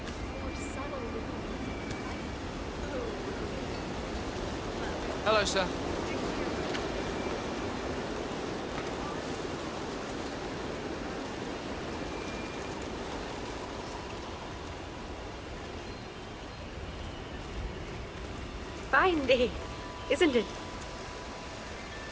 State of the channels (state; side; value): identical; both; correlation 1.00